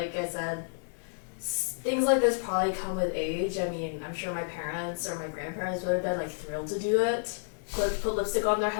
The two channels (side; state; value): right; silent; digital silence